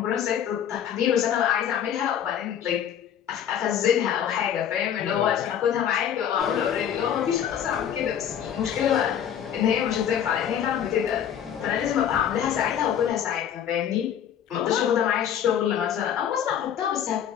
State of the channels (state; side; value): quieter; right; 9.3 dB